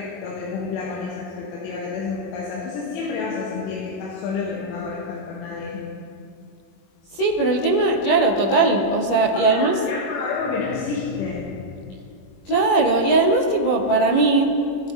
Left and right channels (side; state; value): right; late; 21 ms